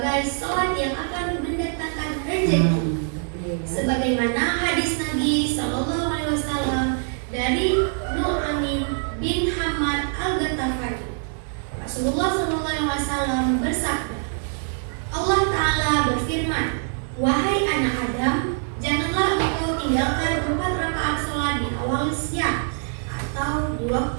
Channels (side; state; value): left; silent; 58 dB below the other